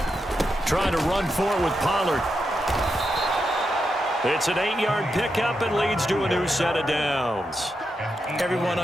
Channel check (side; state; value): both; normal; correlation 0.85